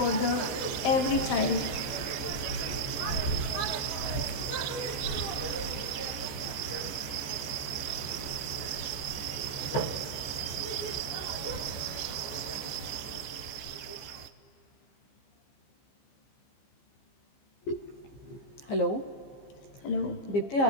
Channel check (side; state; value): right; late; 14 ms